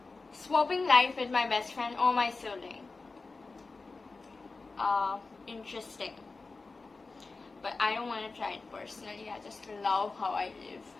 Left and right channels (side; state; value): right; quieter; 3.9 dB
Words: Swapping life with my best friend or my sibling. Interesting, but I don't want to try it personally. I just love how I live